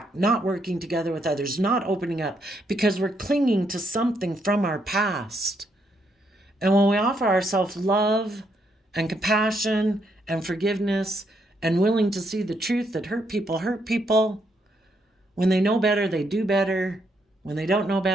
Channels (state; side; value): normal; both; correlation 0.75